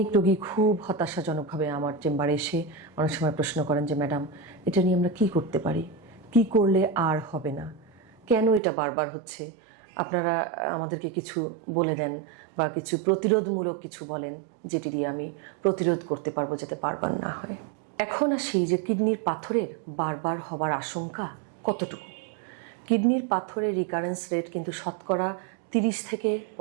রোগী খুব হতাশাজনকভাবে আমার চেম্বারে এসে অনেক সময় প্রশ্ন করেন যে ম্যাডাম, এটা নিয়ে আমরা কী করতে পারি, কি করলে আর হবে না, কেন এটা বারবার হচ্ছে, আপনারা আমাদেরকে কিছু বলে দেন বা কিছু প্রতিরোধমূলক কিছু বলেন যেটি দিয়ে আমি প্রতিরোধ করতে পারবো যাতে বারবার না হয়। এখন আসি যে কিডনির পাথরের বারবার হবার আশঙ্কা কতটুকু। কিডনির পাথরের রিকারেন্স রেট কিন্তু শতকরা 30 থেকে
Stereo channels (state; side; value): drops out; left; at 8.6 s